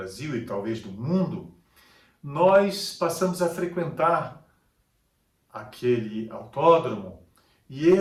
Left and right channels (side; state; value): both; identical; correlation 1.00